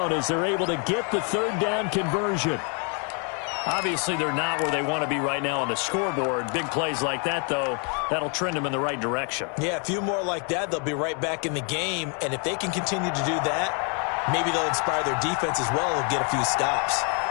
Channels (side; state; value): right; quieter; 38.1 dB